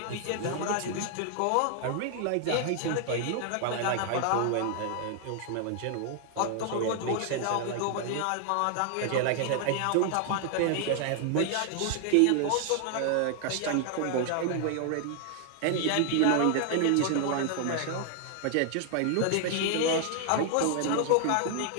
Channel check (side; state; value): both; different; correlation 0.00